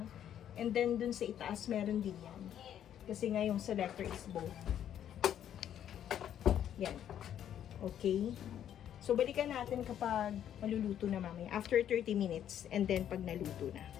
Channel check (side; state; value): right; quieter; 10.2 dB